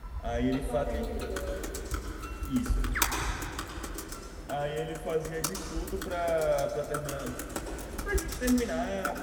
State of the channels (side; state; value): both; identical; correlation 1.00